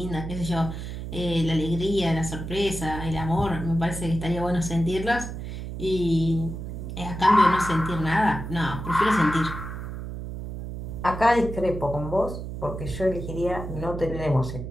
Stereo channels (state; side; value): noise; right; hum, 7 dB below the sound